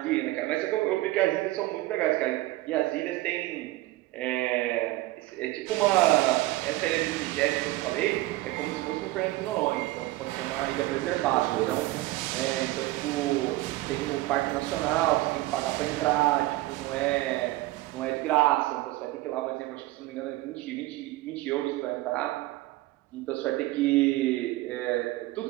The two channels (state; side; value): quieter; left; 18.2 dB